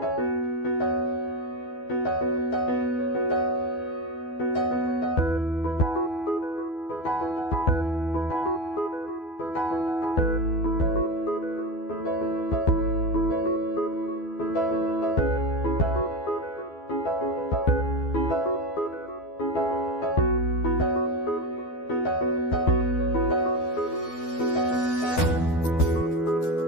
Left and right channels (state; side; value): late; right; 12 ms